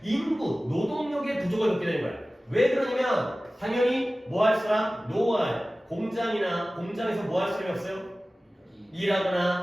인구, 노동력의 부족을 겪게 되는 거야. 왜 그러냐면 당연히 뭐 할 사람? 노할. 공장에서 뭐 할 사람이 없어요?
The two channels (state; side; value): normal; both; correlation 0.97